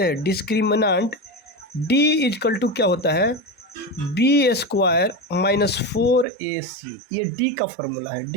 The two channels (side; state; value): left; drops out; at 6.2 s